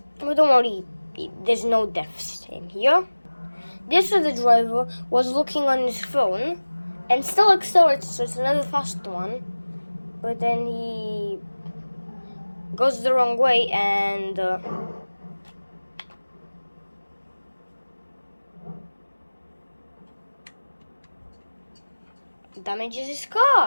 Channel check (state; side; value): inverted; both; correlation -1.00